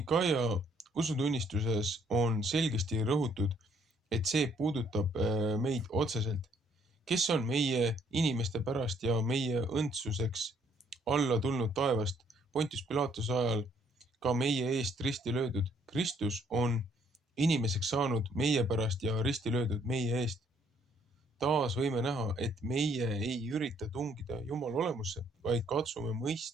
usutunnistuses on selgesti rõhutud, et see puudutab meid otseselt. Kes on meie inimeste pärast ja meie õndsuseks alla tulnud taevast Pontius Pilatuse ajal ka meie eest risti löödud? Kristus on inimeseks saanud meie pärast ja risti löödud meie eest. Taas võime näha, et meie ei ürita tungida Jumala olemusse, vaid katsume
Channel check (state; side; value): normal; both; correlation 0.65